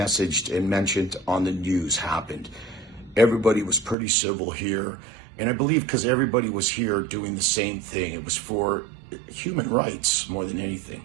and mentioned on the news happened. Everybody was pretty civil here. And I believe because everybody was here doing the same thing. It was for human rights more than anything.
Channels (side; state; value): left; drops out; at 4.0 s